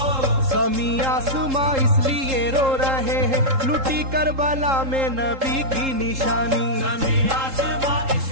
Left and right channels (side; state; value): left; late; 3.7 ms